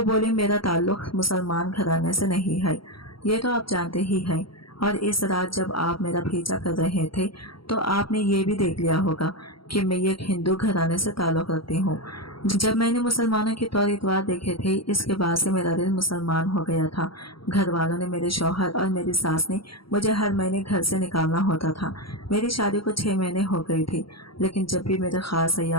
बोली, मेरा ताल्लुक मुसलमान घराने से नहीं है, ये तो आप जानते ही हैं। और इस रात जब आप मेरा पीछा कर रहे थे तो आपने ये भी देख लिया होगा कि मैं एक हिंदू घराने से ताल्लुक रखती हूँ। जब मैंने मुसलमानों के तौर इतवार देखे थे, इसके बाद से मेरा दिल मुसलमान हो गया था। घर वालों ने, मेरे शौहर और मेरी सास ने मुझे हर महीने घर से निकालना होता था। मेरी शादी को 6 महीने हो गए थे, लेकिन जब भी मेरे खास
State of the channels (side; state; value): right; late; 0.74 ms